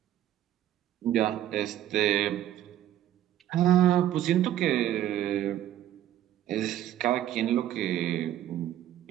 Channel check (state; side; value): quieter; left; 12.2 dB